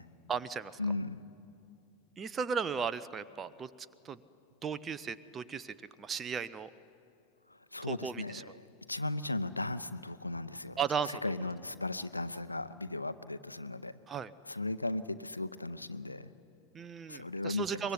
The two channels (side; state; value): both; normal; correlation -0.18